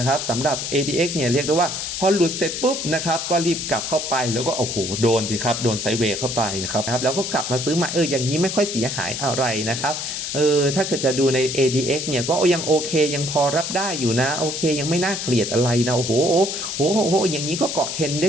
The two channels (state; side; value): noise; left; hiss, 4 dB below the sound